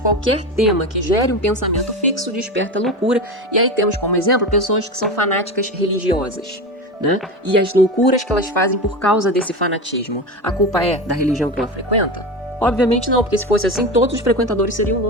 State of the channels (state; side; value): normal; both; correlation 0.23